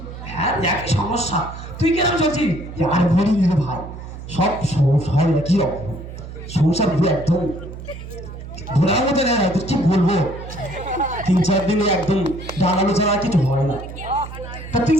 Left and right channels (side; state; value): right; noise; hum, 12 dB below the sound